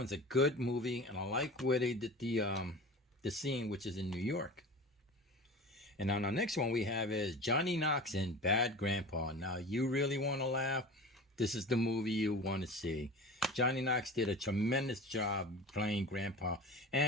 a good movie, and I like where they did the scene, which is in New York. And on our next one we have is Johnny Knox in Bad Grandpa. Now, you really want to laugh? This is the movie you want to see. Johnny Knox did a tremendous job playing Grandpa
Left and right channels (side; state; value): both; normal; correlation 0.35